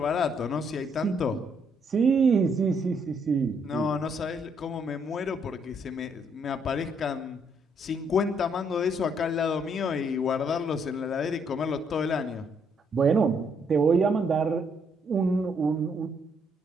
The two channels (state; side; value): normal; both; correlation 0.71